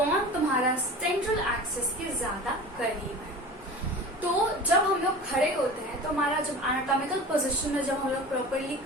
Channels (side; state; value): both; normal; correlation 0.36